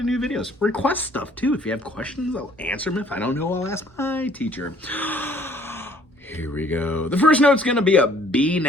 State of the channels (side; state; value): both; normal; correlation 0.58